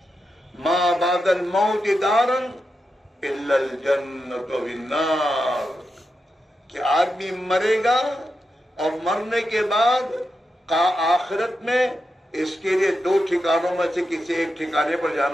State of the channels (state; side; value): normal; both; correlation 0.88